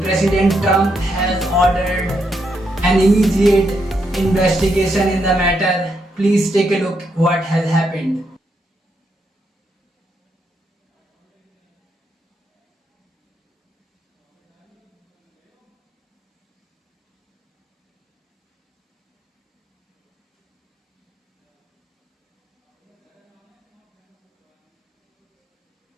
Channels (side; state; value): both; normal; correlation 0.79